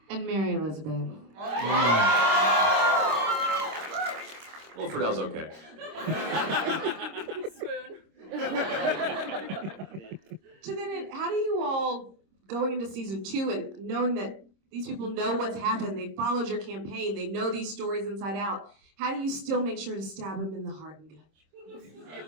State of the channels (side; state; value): left; late; 26 ms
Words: And Mary Elizabeth. Well, Fridel's okay. So then, how do you all, going into season 2 and knowing that these people know what's happened, they followed your campaign, they know these stories inside out, how do you still make sure to stab them in the heart and gut?